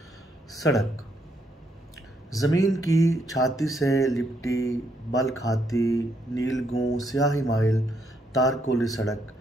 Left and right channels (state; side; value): normal; both; correlation 0.74